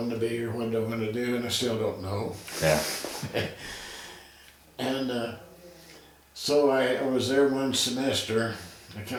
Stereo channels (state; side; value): identical; both; correlation 1.00